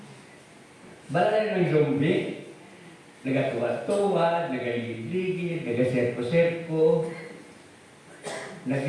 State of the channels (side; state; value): both; identical; correlation 1.00